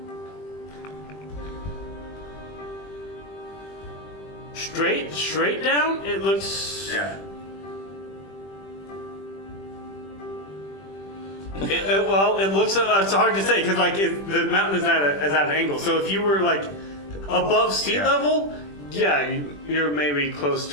Straight down, it looks. Yeah. It looks. It's hard to say because the mountain is at an angle. So if you were like above sea level, yeah, you're maybe close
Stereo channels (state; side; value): late; right; 20 ms